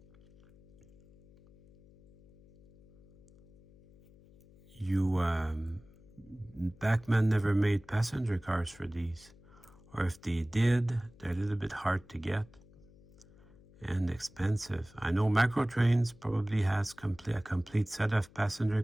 Bachmann never made passenger cars for these. Or if they did, they're a little bit hard to get and expensive. I know Microtrains probably has a complete set of passenger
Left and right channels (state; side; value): noise; left; hum, 25 dB below the sound